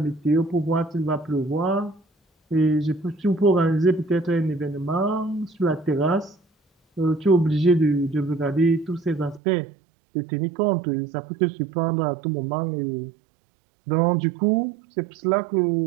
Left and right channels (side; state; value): left; drops out; at 9.4 s